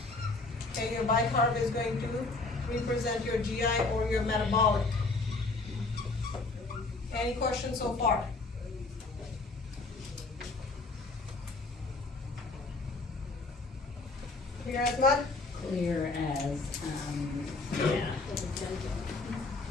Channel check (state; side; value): quieter; right; 3.5 dB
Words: Okay, your bicarb is going to represent your GI or your metabolic. Any questions so far? Clear as mud? Clear as, yeah.